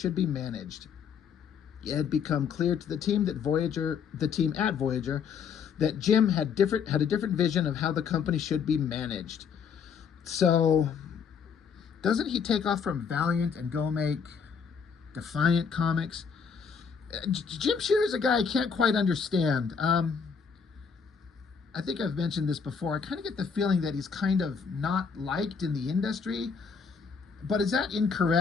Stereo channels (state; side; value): quieter; right; 6.3 dB